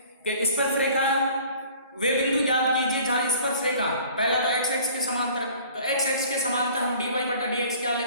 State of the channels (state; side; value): inverted; both; correlation -0.50